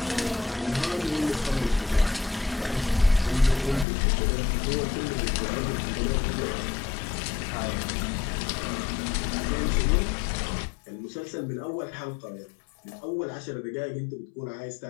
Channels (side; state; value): right; drops out; at 3.9 s